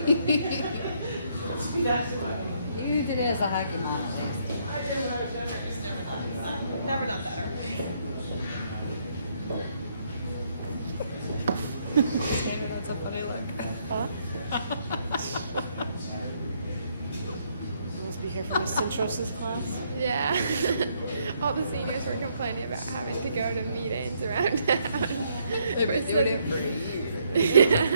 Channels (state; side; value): inverted; both; correlation -0.71